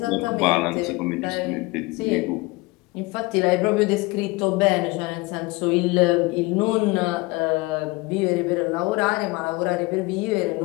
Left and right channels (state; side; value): quieter; right; 23.9 dB